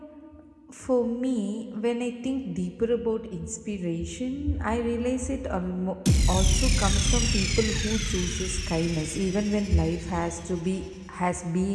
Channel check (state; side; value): identical; both; correlation 1.00